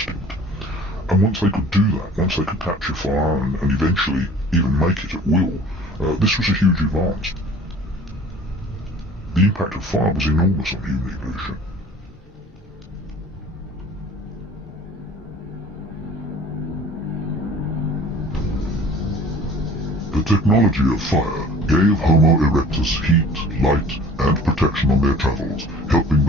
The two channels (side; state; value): both; normal; correlation 0.48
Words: And once they could do that, once they could capture fire and eventually even make it at will, this was a huge advance. The impact of fire was enormous on human evolution. The technology of fire gave Homo erectus heat, light, and protection on their travels, helping